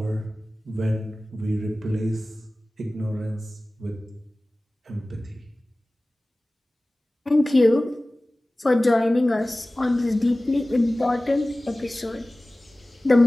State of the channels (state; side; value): normal; both; correlation 0.98